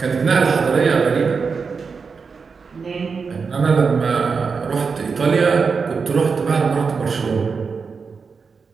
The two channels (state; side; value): quieter; left; 5.2 dB